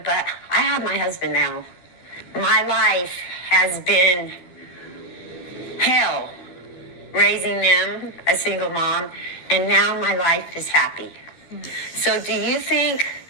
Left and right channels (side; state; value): right; late; 12 ms